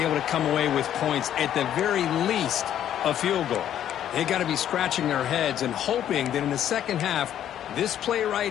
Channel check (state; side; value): quieter; right; 10.7 dB